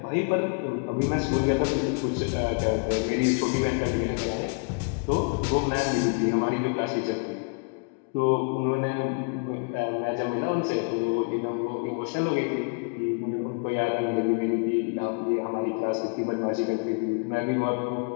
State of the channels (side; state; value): right; quieter; 37.5 dB